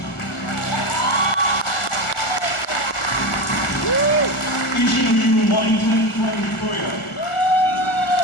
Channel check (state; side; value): late; right; 1.4 ms